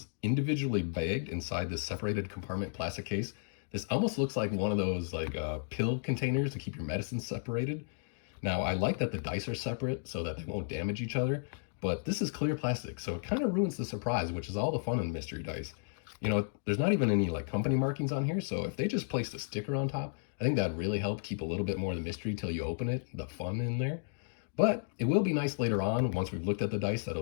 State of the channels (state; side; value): silent; right; digital silence